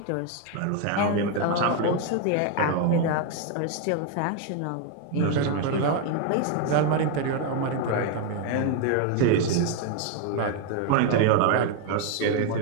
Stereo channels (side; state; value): both; different; correlation 0.01